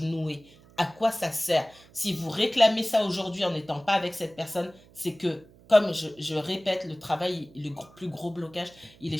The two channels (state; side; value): noise; right; hum, 25 dB below the sound